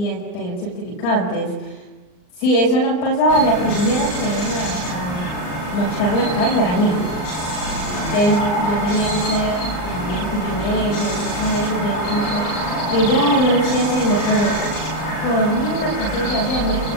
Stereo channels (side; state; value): right; late; 39 ms